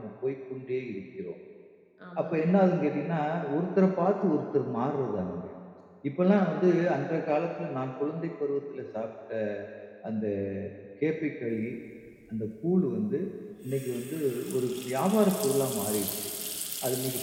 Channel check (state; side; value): identical; both; correlation 1.00